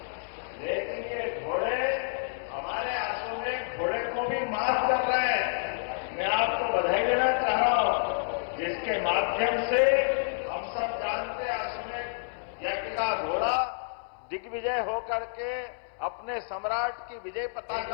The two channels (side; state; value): right; silent; 58 dB below the other